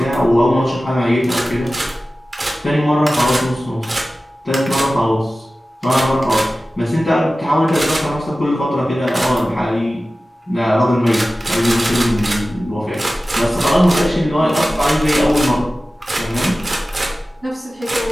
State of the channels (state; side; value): normal; both; correlation 0.96